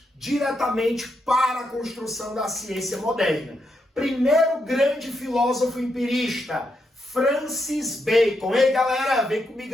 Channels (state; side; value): normal; both; correlation 0.81